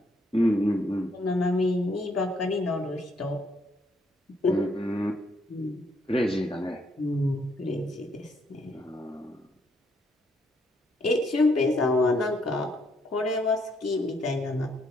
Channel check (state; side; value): normal; both; correlation 0.72